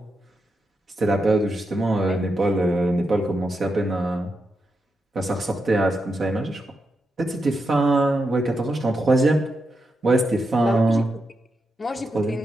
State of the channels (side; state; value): both; normal; correlation 0.86